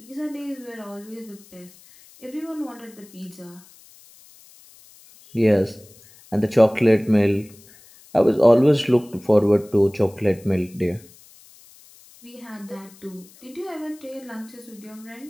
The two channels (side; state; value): left; noise; hiss, 25 dB below the sound